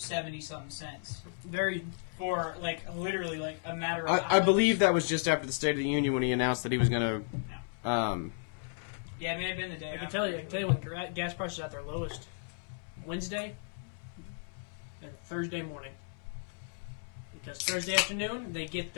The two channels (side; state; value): right; silent; 55 dB below the other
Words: cents. For, literally, a matter of hours. I believe that was just after the State of the Union when he announced that he was going to... Yeah, it may have been the day after. I can tell you when gas prices are at their lowest. Wednesday and Thursday morning. Because Thursday afternoon, they get